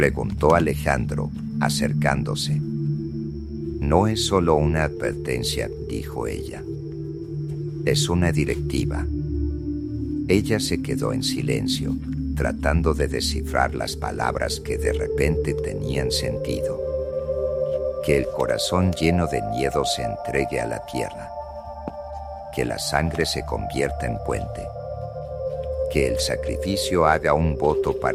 Alejandro, acercándose. No es solo una advertencia, dijo ella. Es una directiva. Ella se quedó en silencio, tratando de descifrar las palabras que de repente tenían sentido. Que el corazón lleno de miedo se entregue a la tierra. Que la sangre se convierta en puente. Que el sacrificio haga un voto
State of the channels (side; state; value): both; identical; correlation 1.00